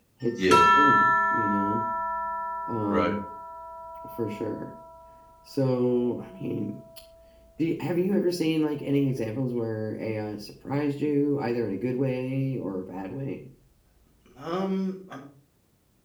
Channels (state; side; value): identical; both; correlation 1.00